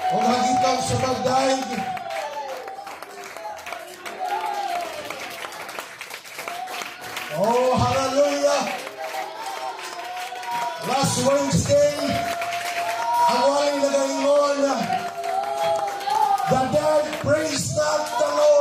o hagitan sa pagdaig. Oh, hallelujah! Last Wednesday, ang waling nagaingon, the dead praise not the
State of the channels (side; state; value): both; identical; correlation 1.00